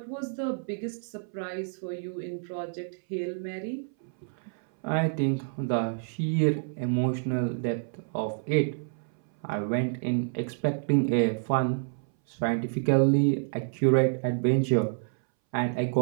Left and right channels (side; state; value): left; silent; 59 dB below the other